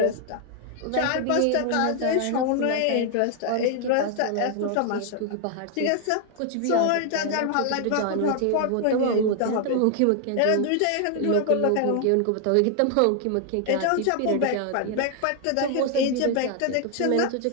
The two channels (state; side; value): different; both; correlation 0.00